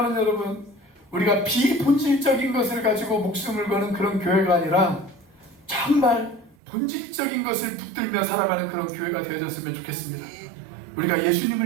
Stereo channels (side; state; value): left; drops out; at 6.6 s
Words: 여러분, 우리가 비본질적인 것을 가지고 목숨을 거는 그런 교회가 아니라 정말 본질적인 것을 붙들며 살아가는 그런 교회가 되어졌으면 좋겠습니다. 우리가